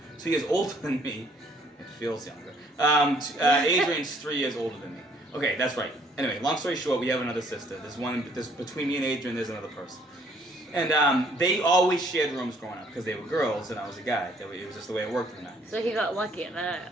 2 years older than me. It feels younger. Adrian's 3 years older than me. Okay, that's right. Anyway, long story short, we have another sister. There's between me and Adrian, there's another person. And they always shared rooms growing up because they were girls and I was a guy. It was just the way it worked in the 90s. So he got lucky in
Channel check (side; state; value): both; normal; correlation 0.62